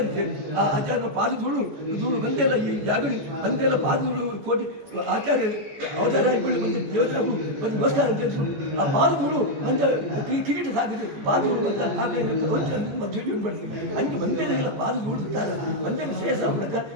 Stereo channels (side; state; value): left; late; 14 ms